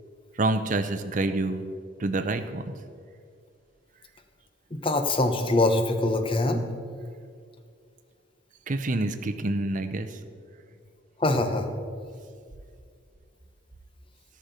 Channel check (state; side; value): normal; both; correlation 0.55